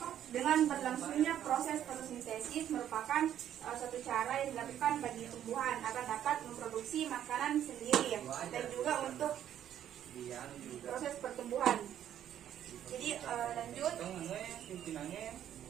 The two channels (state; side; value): quieter; left; 10.6 dB